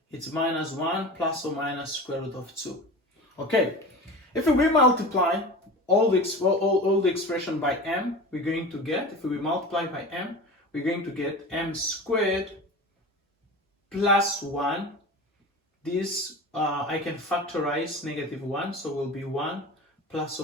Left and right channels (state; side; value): normal; both; correlation 0.33